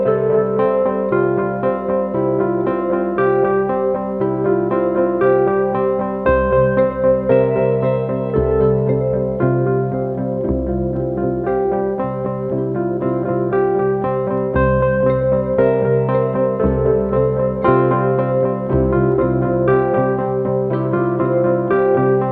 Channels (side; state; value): both; identical; correlation 1.00